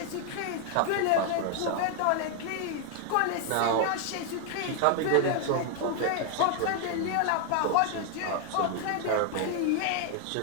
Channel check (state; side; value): different; both; correlation 0.00